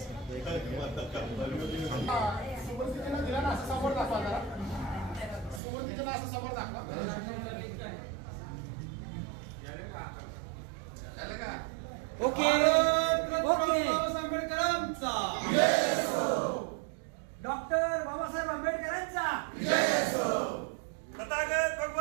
समोर दाखवा जरा. सुरुवातीला असं समोर दाखवा. Okay okay. आंबेडकरांचा डॉक्टर बाबासाहेब आंबेडकरांचा तथागत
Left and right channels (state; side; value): drops out; left; at 5.6 s